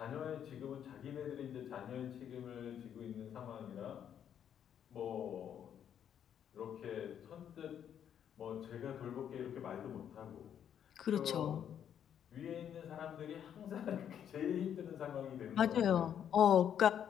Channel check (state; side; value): quieter; right; 9.2 dB